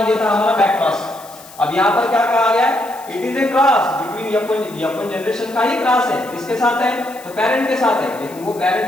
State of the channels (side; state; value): left; noise; hiss, 20 dB below the sound